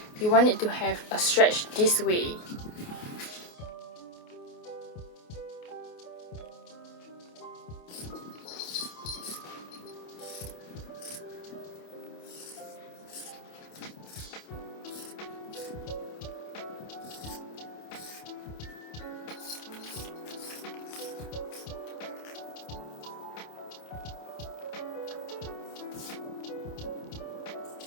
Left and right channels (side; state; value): right; late; 28 ms